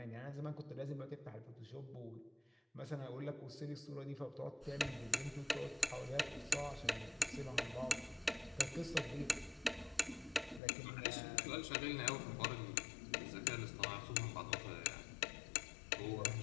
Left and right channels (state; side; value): drops out; right; at 10.6 s